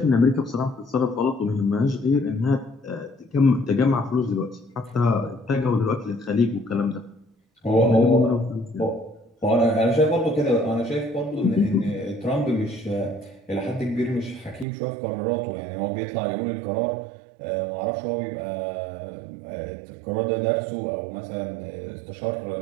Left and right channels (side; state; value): left; drops out; at 14.7 s